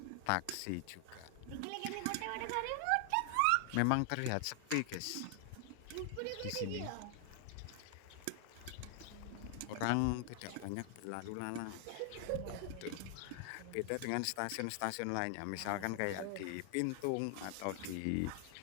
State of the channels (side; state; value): both; different; correlation 0.00